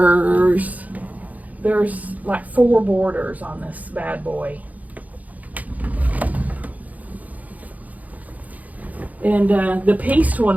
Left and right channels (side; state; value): left; late; 0.076 ms